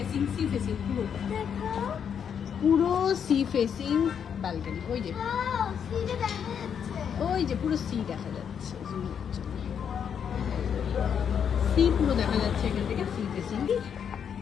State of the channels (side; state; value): right; quieter; 7.8 dB